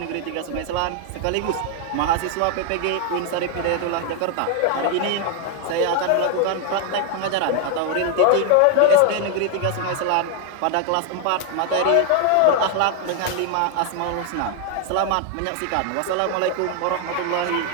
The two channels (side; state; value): both; different; correlation 0.00